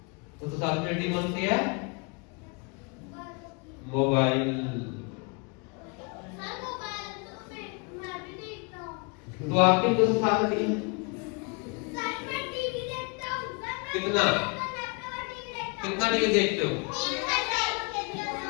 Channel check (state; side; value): quieter; right; 32.9 dB